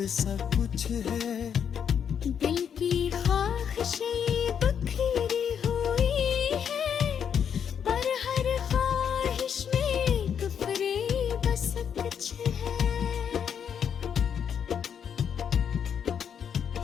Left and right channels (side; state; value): right; quieter; 8.0 dB